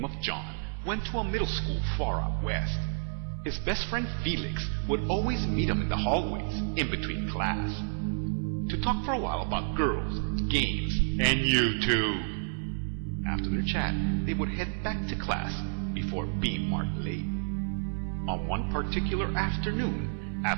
of John went to a middle school far out west. His best friend Felix would always meet him in the hallways in between class to talk for a while about girls, games, and YouTube. After their chat, they would head back to class before being marked late. On one particular afternoon,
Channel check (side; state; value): left; silent; 58 dB below the other